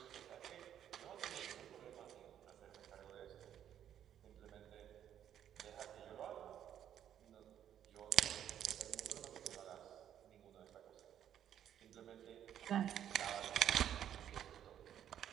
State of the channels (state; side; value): quieter; left; 10.2 dB